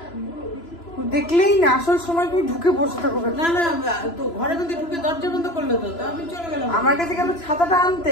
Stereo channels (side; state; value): right; late; 3.0 ms